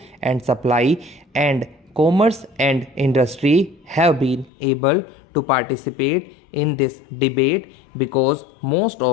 and Supply and Commerce and Industry, have been able to participate in this debate, because most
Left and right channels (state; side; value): drops out; right; at 4.5 s